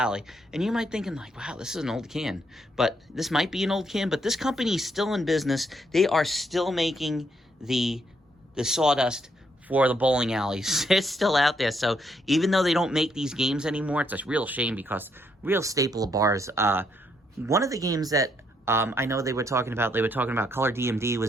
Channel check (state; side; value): normal; both; correlation 0.74